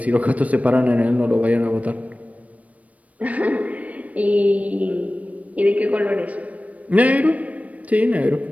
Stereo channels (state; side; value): late; left; 0.068 ms